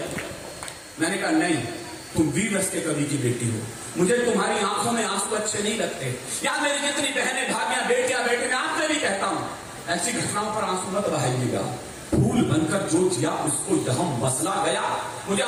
मैंने कहा नहीं, तुम वीर रस के कवि की बेटी हो, मुझे तुम्हारी आंखों में आंसू अच्छे नहीं लगते। या मेरी जितनी बहनें भाभियां बेटियां बेटे, मैं आपसे भी कहता हूं ऐसी घटनाओं पर आंसू मत बहाइएगा। फूल बनकर जो जिया उसको यहां मसला गया। मुझे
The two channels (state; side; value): identical; both; correlation 1.00